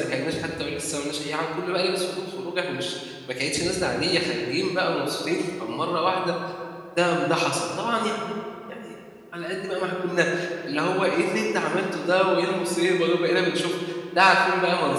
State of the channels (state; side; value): identical; both; correlation 1.00